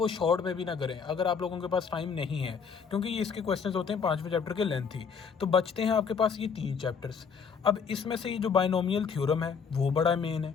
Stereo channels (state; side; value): quieter; right; 6.1 dB